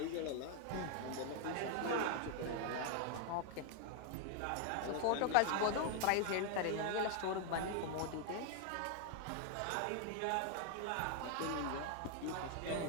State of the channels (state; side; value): different; both; correlation 0.00